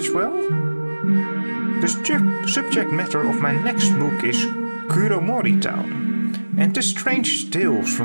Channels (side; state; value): both; inverted; correlation -1.00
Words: well? The subject matter of my next book is Kuromori town, and the strange tales